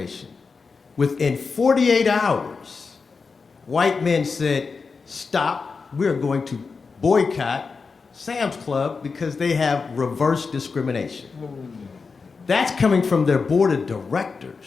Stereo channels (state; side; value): quieter; right; 4.8 dB